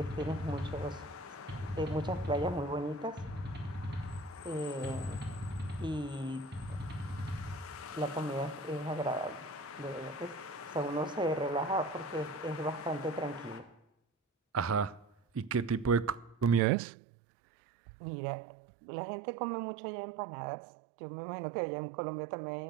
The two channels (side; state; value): left; drops out; at 16.6 s